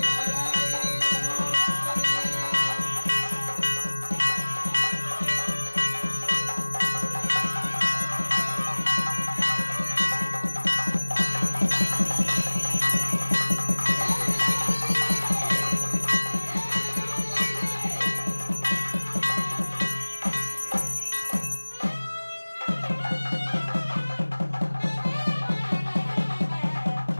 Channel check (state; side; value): inverted; both; correlation -1.00